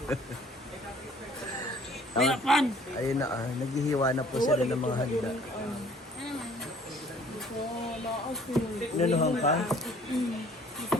Ayun na, naghihiwa na po sila ng mga handa. Nanuhang ka?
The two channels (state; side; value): normal; both; correlation 0.55